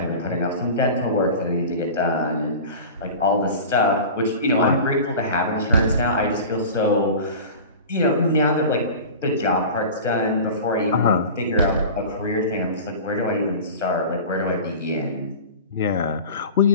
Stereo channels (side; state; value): both; inverted; correlation -0.35